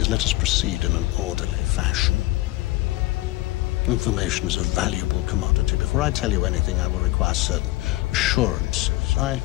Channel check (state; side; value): quieter; right; 18.9 dB